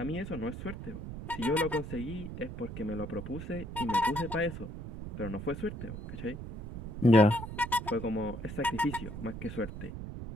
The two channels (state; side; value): noise; right; rumble, 9 dB below the sound